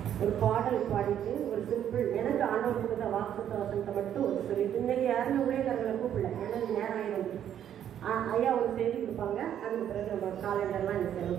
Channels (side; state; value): left; quieter; 10.0 dB